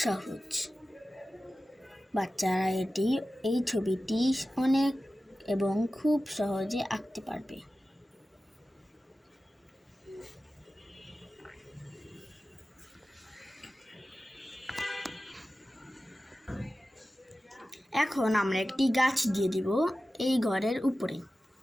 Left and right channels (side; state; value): both; normal; correlation 0.95